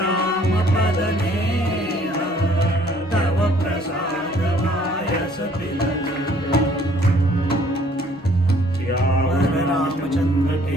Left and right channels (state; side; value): normal; both; correlation 0.60